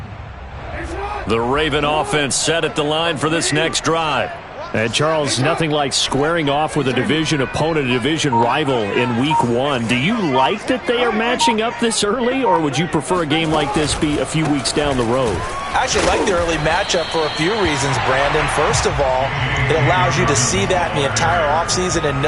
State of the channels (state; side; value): identical; both; correlation 1.00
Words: The Raven offense set at the line for this next drive. And, Charles, nothing like squaring off with a division opponent, a division rival in Week 1. Do you like that they are matching up this early, or would you prefer a game like this be a few weeks down the road? I actually like the early matchup for a few reasons, Brandon. First of all, it allows you to see that in the entire offseason and